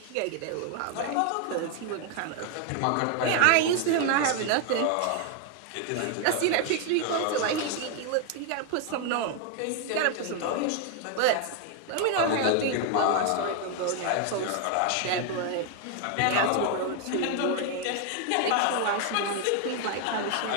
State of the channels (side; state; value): both; different; correlation 0.01